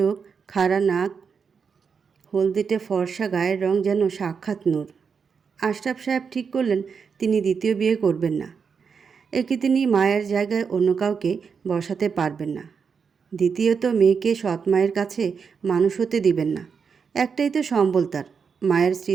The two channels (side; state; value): left; quieter; 6.0 dB